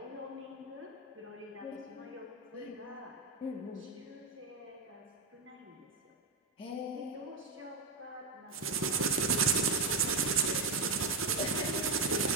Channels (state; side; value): quieter; left; 4.0 dB